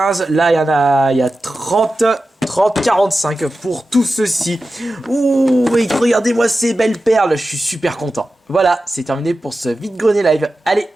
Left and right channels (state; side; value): normal; both; correlation 0.93